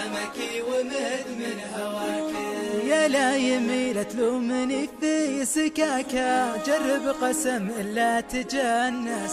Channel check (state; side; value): identical; both; correlation 1.00